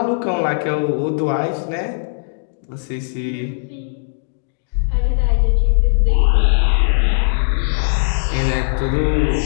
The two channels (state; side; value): silent; right; digital silence